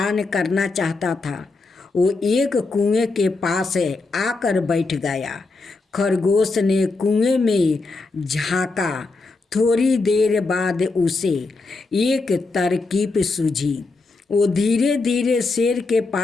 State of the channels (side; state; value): right; quieter; 3.7 dB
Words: करना चाहता था। वो एक कुएं के पास आकर बैठ गया। खरगोश ने कुएं में झांका। थोड़ी देर बाद उसे एक तरकीब सूझी। वो धीरे धीरे शेर के